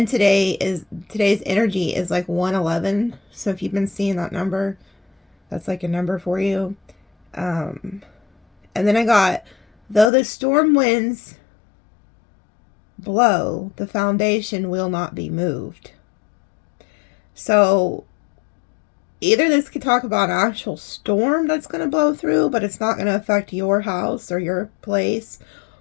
today's energy is like 111. So if you've been seeing that number, that's like a number for you. And then I got, though the storm winds blow, the foundation will not be moved. So either this could talk about an actual storm that's going to blow through, but it's not going to affect your house or your place,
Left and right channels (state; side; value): drops out; right; at 10.1 s